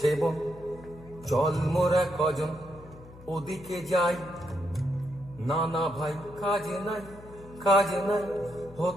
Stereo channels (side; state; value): left; noise; hum, 19 dB below the sound